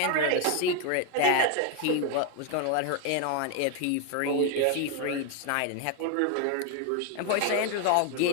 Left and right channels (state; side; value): different; both; correlation 0.01